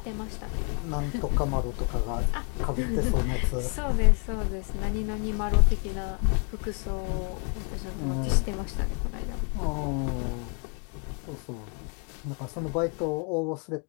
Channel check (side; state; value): right; quieter; 39.5 dB